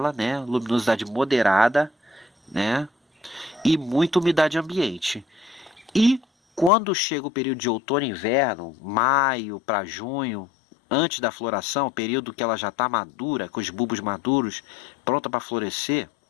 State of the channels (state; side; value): drops out; right; at 6.7 s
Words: né? Luminosidade moderada, né? E muita umidade ambiente. E quando chega o período de outono e inverno, maio para junho, antes da floração, período que ela já está madura, com os bulbos maduros, pronta para florescer,